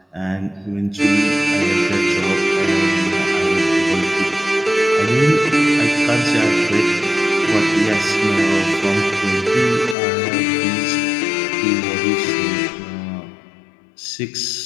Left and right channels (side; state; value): right; drops out; at 10.0 s